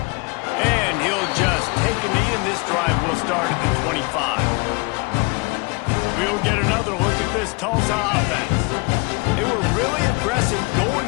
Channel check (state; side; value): quieter; right; 28.9 dB